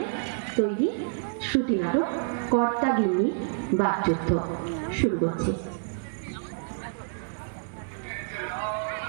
তৈরি শ্রুতি নাটক কর্তা গিন্নি বাকযুদ্ধ। শুরু করছি।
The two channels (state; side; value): silent; left; 59 dB below the other